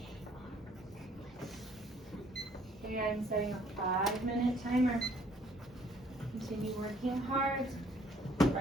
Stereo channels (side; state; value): both; normal; correlation 0.61